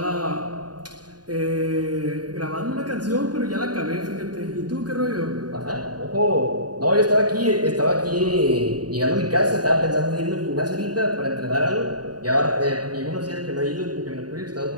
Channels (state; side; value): late; left; 0.69 ms